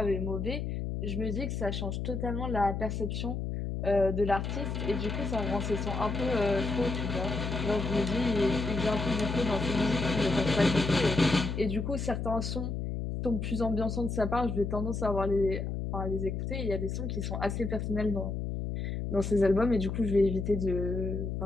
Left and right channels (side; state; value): left; noise; hum, 3 dB below the sound